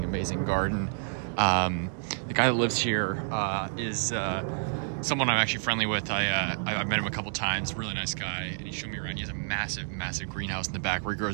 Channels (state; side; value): silent; left; digital silence